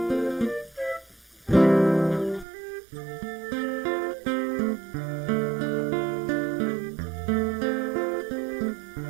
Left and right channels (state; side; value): drops out; left; at 2.5 s